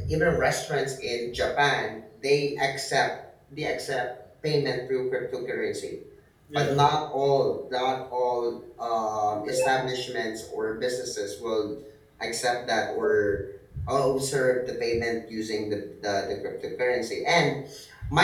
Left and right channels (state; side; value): identical; both; correlation 1.00